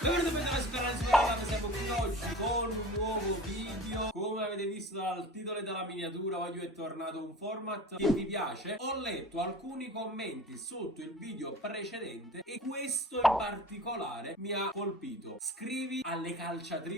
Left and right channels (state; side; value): normal; both; correlation 0.39